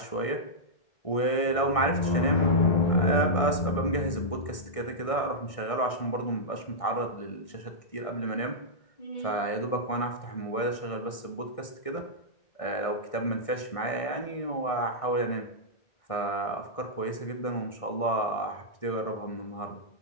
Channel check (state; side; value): late; right; 1.6 ms